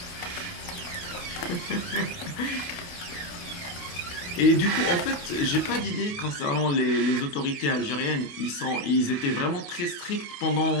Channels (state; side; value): late; right; 28 ms